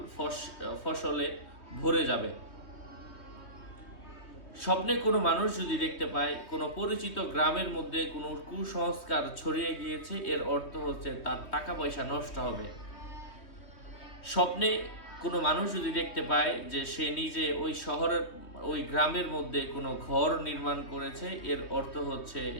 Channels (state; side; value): late; right; 3.2 ms